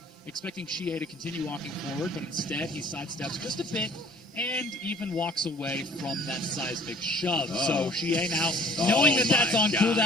Expecting 𝐒𝐲 to continue walking forward, but instead he sidesteps just a bit and even walks away from that seismic shove. So 𝐒𝐲 now, knowing that that's on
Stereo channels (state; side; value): normal; both; correlation 0.52